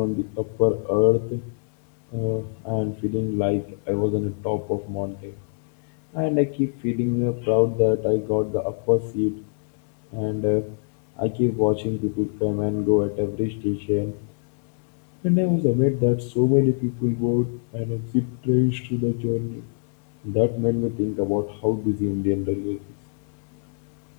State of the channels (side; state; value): right; silent; 62 dB below the other